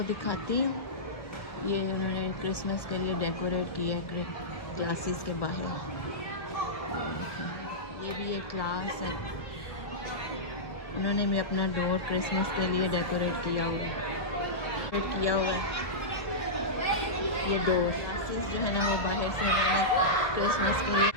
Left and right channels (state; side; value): late; right; 1.4 ms